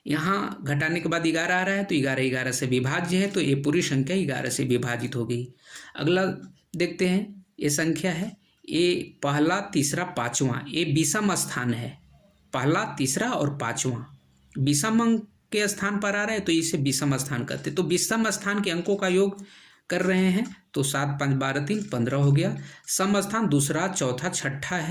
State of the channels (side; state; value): both; identical; correlation 1.00